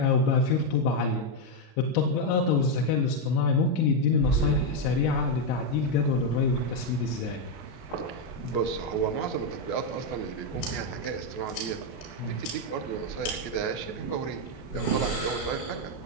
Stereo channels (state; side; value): late; right; 32 ms